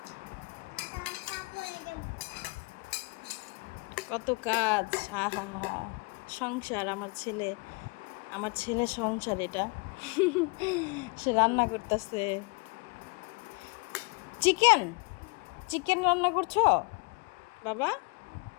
কত কাজ। হা হা হা, সংসার আমার ছেলে সংসার এটা। সে রান্না করতেছে। চিকেন চিকেন রান্না করছো বাবা?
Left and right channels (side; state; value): right; quieter; 29.4 dB